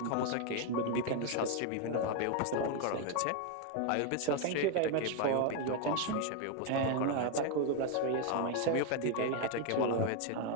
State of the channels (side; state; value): both; different; correlation 0.01